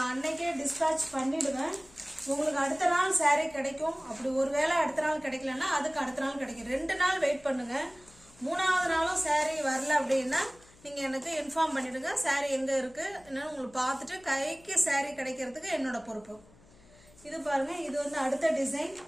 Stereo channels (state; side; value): noise; left; hum, 26 dB below the sound